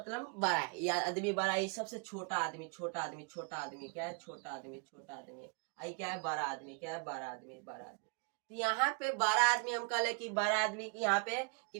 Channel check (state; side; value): quieter; left; 35.6 dB